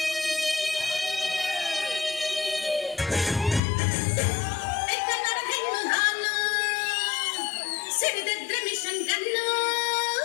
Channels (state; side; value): drops out; right; at 3.6 s